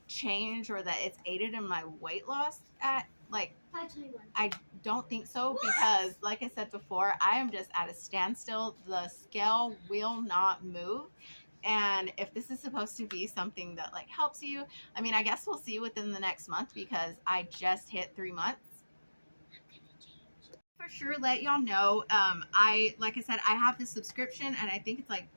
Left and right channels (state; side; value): inverted; both; correlation -1.00